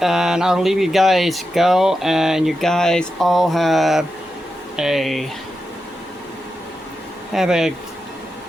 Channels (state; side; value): normal; both; correlation 0.89